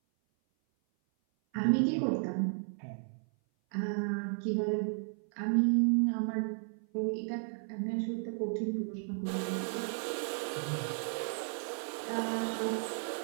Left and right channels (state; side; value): silent; left; 55 dB below the other